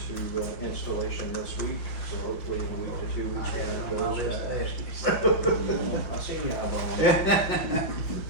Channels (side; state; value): right; late; 5.6 ms